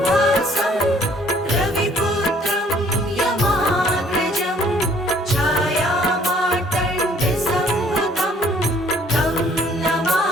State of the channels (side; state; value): both; normal; correlation 0.60